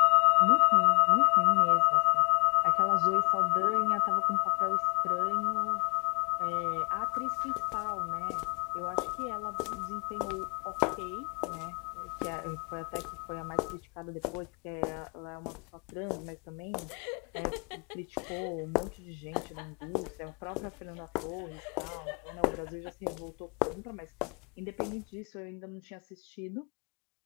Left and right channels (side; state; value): right; quieter; 34.1 dB